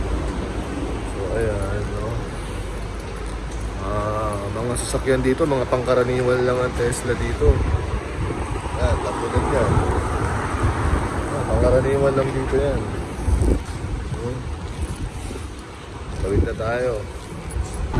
So ayan. No? Mga sasakyan dito, mga pangkaraniwan lang ang Tesla dito. Yan, tapos yan. Pangkaraniwan lang dito yan. Tawid na tayo.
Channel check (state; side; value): identical; both; correlation 1.00